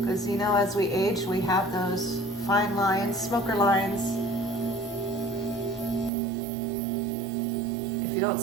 you know, as we age, we have those fine lines, smoker lines. If you don't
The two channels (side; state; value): left; drops out; at 6.1 s